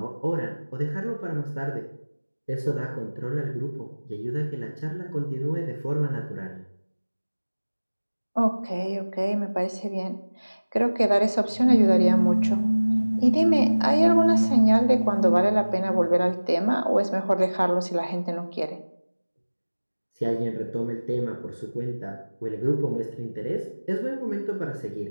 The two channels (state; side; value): inverted; both; correlation -1.00